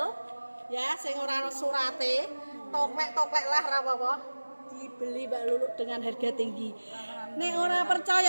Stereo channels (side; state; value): both; inverted; correlation -1.00